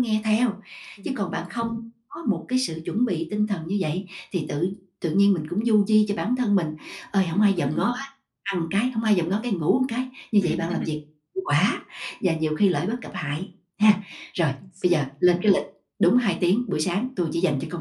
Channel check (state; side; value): identical; both; correlation 1.00